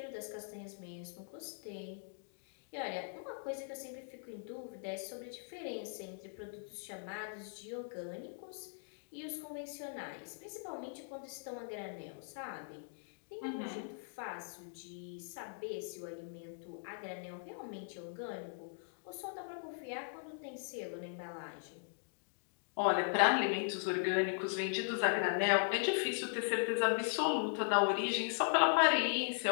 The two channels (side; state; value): right; silent; digital silence